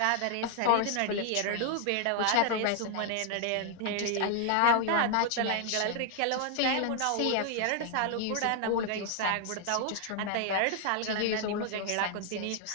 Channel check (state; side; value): different; both; correlation 0.00